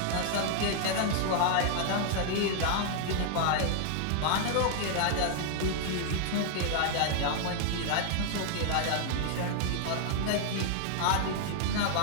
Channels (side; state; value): both; different; correlation 0.00